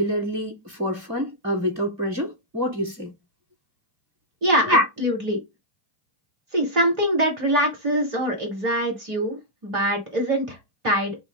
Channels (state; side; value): late; left; 2.3 ms